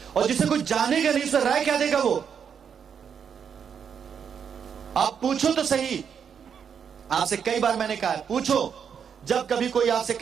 और जिसे कोई जानेगा नहीं उसमें राय क्या देगा वो? आप पूछो तो सही। आपसे कई बार मैंने कहा है, पूछो। जब कभी कोई आपसे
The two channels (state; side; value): quieter; left; 7.3 dB